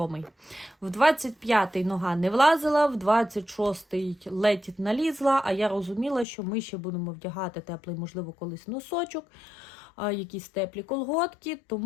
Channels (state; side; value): drops out; right; at 6.2 s